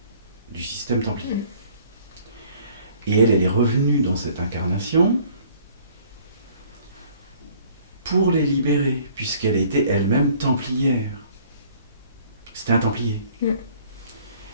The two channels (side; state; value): both; inverted; correlation -0.56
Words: du système templier. Et elle est revenue dans cette incarnation pour les libérer, puisqu'elle était elle-même templière. C'était un templier.